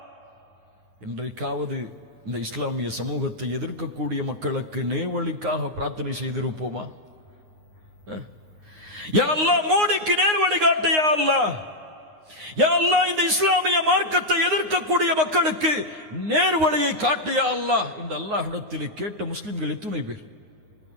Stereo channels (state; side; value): late; left; 9.6 ms